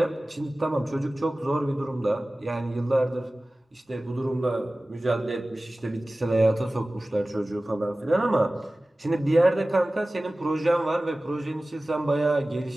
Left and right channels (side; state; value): both; normal; correlation 0.97